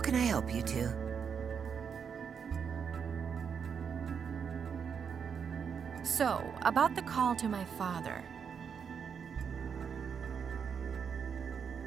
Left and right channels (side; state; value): left; quieter; 6.9 dB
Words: I help you two? So, about the call to my father.